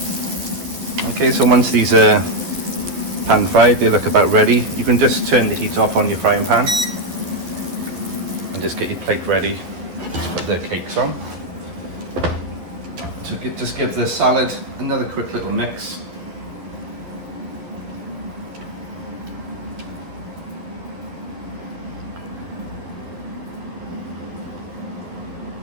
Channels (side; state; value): left; late; 11 ms